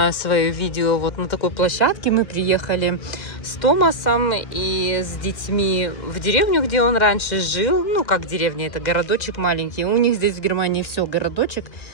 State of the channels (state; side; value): late; right; 2.0 ms